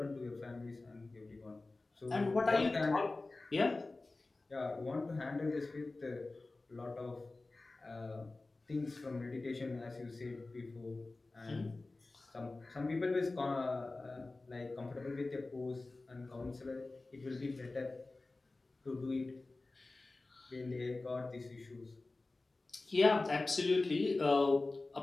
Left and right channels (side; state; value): right; quieter; 3.3 dB